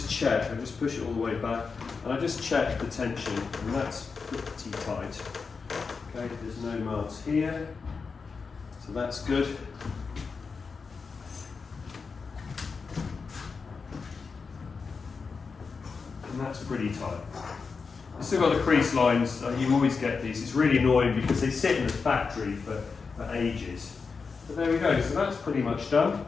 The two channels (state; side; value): quieter; right; 5.0 dB